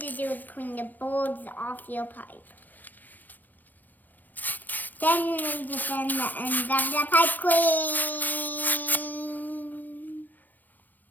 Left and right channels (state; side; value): late; right; 0.088 ms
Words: to do is clean the boards off your pipe. Then you need to sand the ends of the pipe clean.